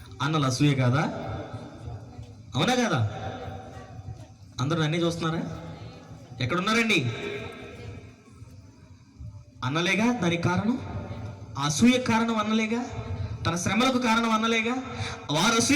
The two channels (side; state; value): both; identical; correlation 1.00